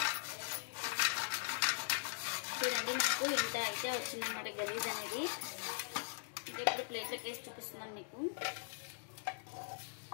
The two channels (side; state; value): right; silent; digital silence